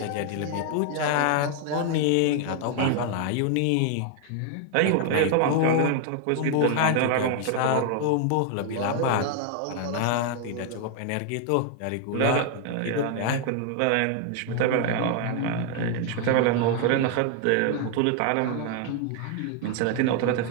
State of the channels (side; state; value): both; different; correlation 0.00